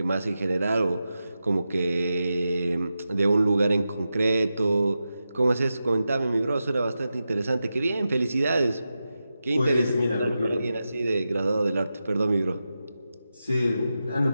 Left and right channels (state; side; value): inverted; both; correlation -0.91